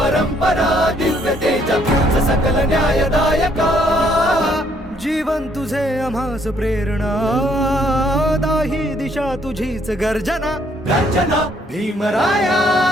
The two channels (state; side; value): normal; both; correlation 0.67